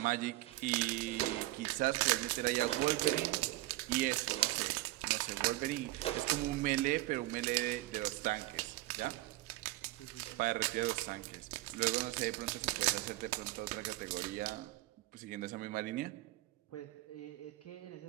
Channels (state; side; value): quieter; left; 18.5 dB